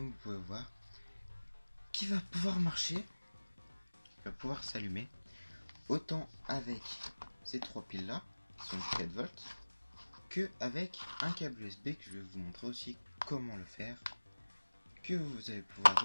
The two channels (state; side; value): inverted; both; correlation -1.00